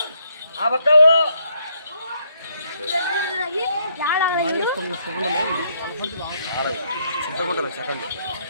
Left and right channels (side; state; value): both; inverted; correlation -0.73